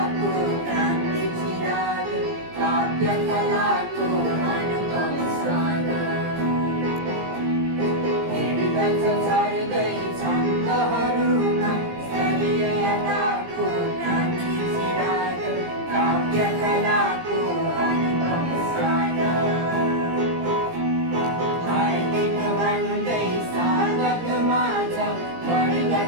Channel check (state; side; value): late; left; 17 ms